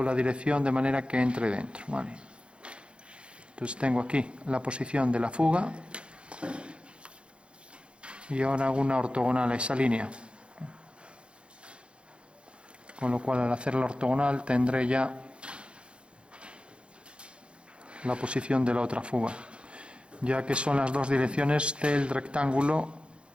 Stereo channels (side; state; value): left; late; 0.057 ms